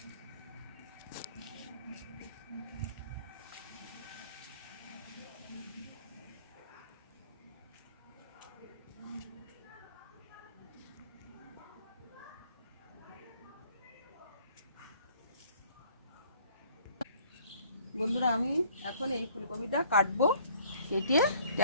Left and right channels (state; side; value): inverted; both; correlation -0.58